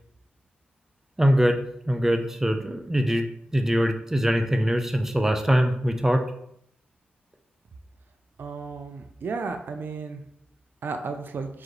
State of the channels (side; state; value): both; normal; correlation 0.95